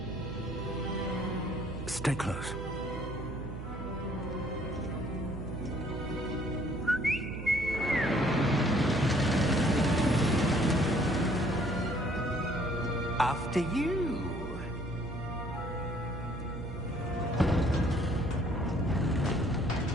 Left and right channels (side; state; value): right; noise; hum, 8 dB below the sound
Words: Stay close. After you.